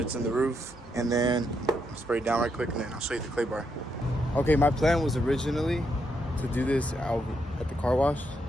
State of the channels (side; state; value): both; normal; correlation 0.79